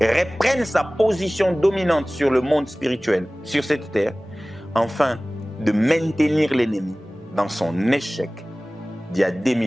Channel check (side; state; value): both; normal; correlation 0.98